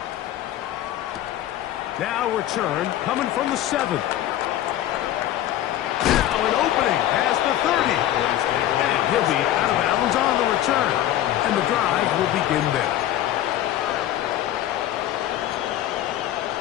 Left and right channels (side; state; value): right; quieter; 12.8 dB